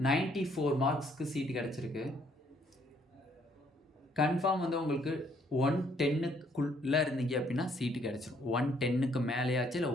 94 மார்க்ஸ்க்கு சீட்டு கிடச்சிருக்கு. கன்ஃபார்ம் வந்து உங்களுக்கு 110க்குள்ளே இருந்தீங்க அப்படின்னா சீட்டு கிடச்சிரும். 110க்கு மேலேயாச்சு இல்லை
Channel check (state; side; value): normal; both; correlation 0.66